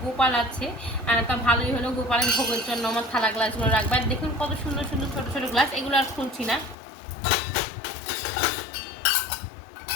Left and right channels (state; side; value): drops out; right; at 6.8 s